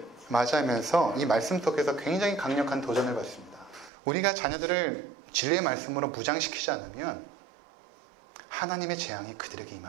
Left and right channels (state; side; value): drops out; left; at 3.9 s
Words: 맞이하면서 이 말씀 속에서 굉장히 강력한 도전을 받습니다. 우리가 자녀들을 진리의 말씀으로 무장시키지 않으면 하나님의 재앙이 그들에게